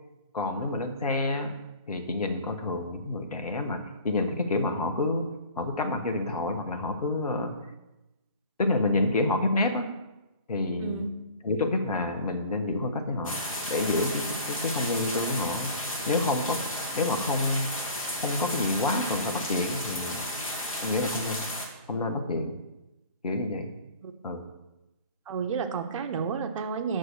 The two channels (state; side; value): inverted; both; correlation -0.42